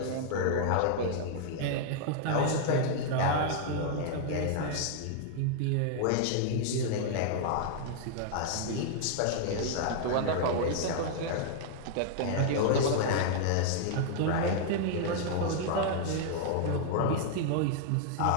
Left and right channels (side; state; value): both; different; correlation -0.01